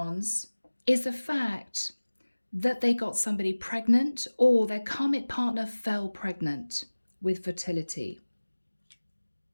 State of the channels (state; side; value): inverted; both; correlation -1.00